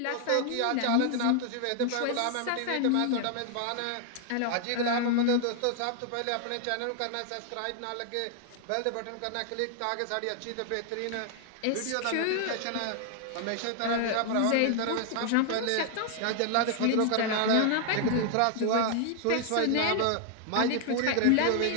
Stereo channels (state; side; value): different; both; correlation 0.00